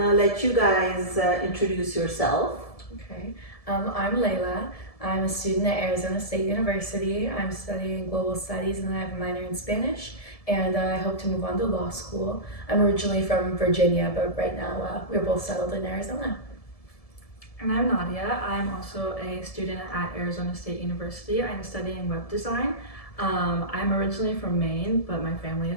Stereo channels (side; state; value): right; late; 1.7 ms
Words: let you guys introduce yourself. Okay. I'm Layla. I'm a student at Arizona State University. I'm studying global studies and I have a minor in Spanish. And I hope to move on to law school. I'm originally from Virginia, but right now we're both settled in Arizona. And I'm Nadia. I'm also a student at Arizona State University. I'm studying web design. I'm originally from Maine, but my family